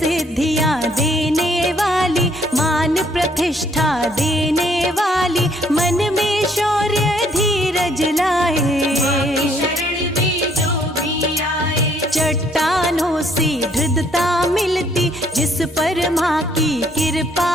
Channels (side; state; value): both; normal; correlation 0.65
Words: देने वाली, मान प्रतिष्ठा देने वाली। मन में शौर्य धीरज लाए, माँ की शरण में जो भी आए। चट्टानों से दृढ़ता मिलती, जिस पर माँ की कृपा